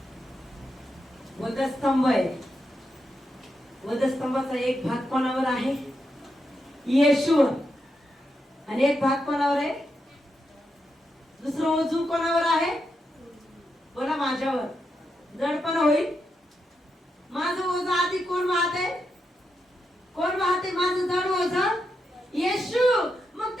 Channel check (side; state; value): both; normal; correlation 0.85